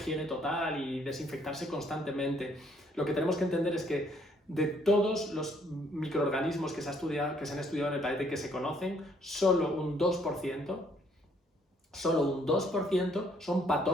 total y desinfectarse constantemente, lo que tenemos que entender es que de todos los microorganismos que se han estudiado en el planeta y que se conocen, solo un 2% son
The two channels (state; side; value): normal; both; correlation 0.66